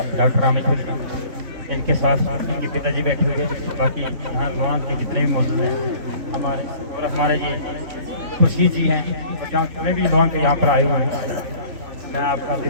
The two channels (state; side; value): late; left; 3.5 ms